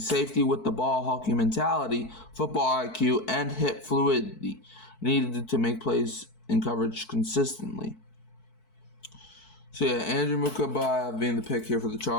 safety with the ball hawking mentality, football IQ, and hip fluidity needed to make plays in coverage consistently. So yeah, Andrew Mukuba being the pick here for the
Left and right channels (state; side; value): late; right; 4.6 ms